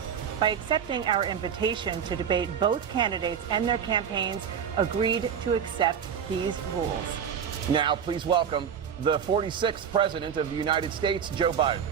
By accepting our invitation to debate, both candidates and their campaigns agreed to accept these rules. Now, please welcome the 46th President of the United States, Joe Biden.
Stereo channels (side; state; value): left; quieter; 7.8 dB